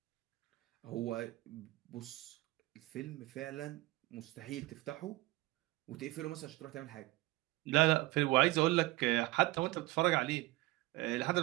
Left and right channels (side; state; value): left; quieter; 20.0 dB